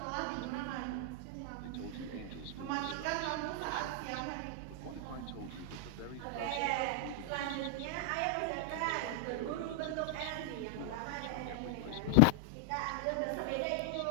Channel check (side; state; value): both; different; correlation 0.00